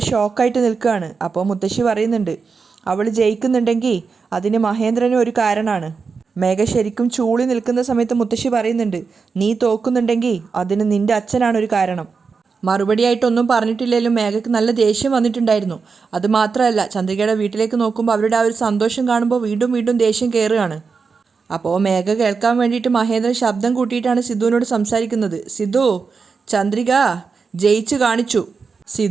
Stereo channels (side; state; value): left; quieter; 5.1 dB